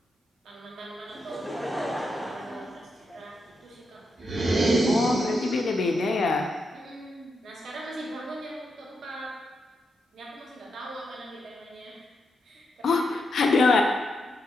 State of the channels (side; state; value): both; normal; correlation 0.84